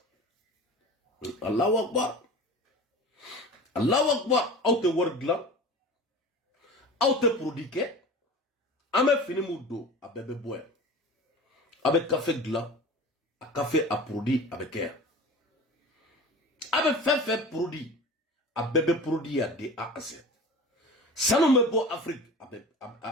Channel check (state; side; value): normal; both; correlation 0.36